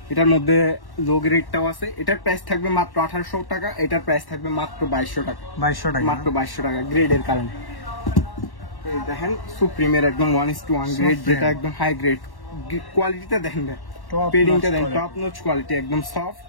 এটার মধ্যে লো গ্রেডটাও আছে। এটার প্রাইস থাকবে মাত্র 1800 টাকা। এটার প্রাইস থাকবে মাত্র 2200 টাকা। 2200 টাকা। মাত্র 2200 টাকা গ্রেডের কারণে। এই দেখেন সুপ্রিমের একদম 1:1 গ্রেড, Supreme। যেটা একদম হাই গ্রেড। কোয়ালিটিটা দেখেন, Top পেডিংটা notch দেখেন, quality। টপ নোচ কোয়ালিটি, একদম সফট।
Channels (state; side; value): late; right; 1.1 ms